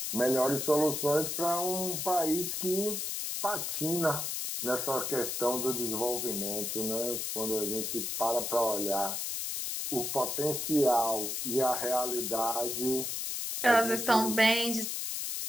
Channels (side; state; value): left; noise; hiss, 2 dB below the sound